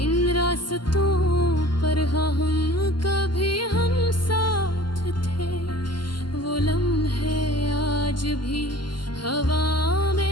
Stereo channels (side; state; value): right; late; 0.71 ms